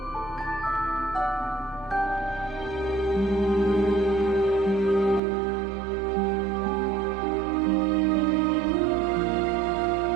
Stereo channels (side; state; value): left; drops out; at 5.2 s